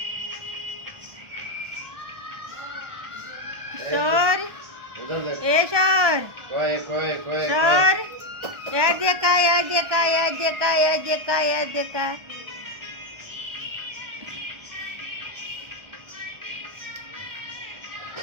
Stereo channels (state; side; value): late; left; 1.4 ms